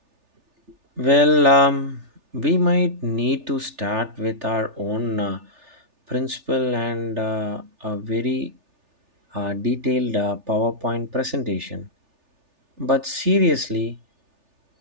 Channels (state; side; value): late; left; 3.4 ms